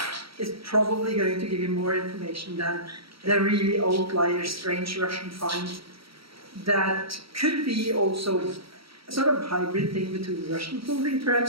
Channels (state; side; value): late; left; 0.75 ms